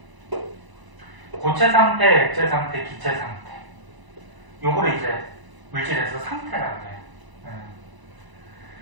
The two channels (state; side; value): late; left; 1.0 ms